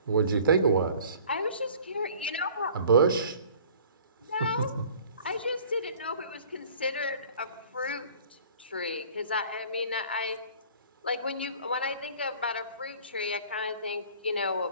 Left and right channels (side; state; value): both; inverted; correlation -0.49